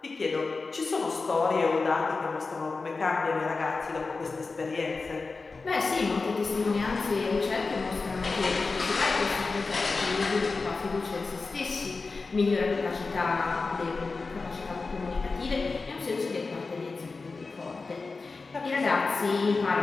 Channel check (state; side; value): quieter; right; 4.0 dB